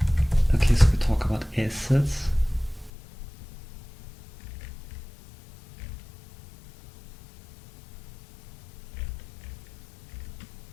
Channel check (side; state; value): right; drops out; at 2.9 s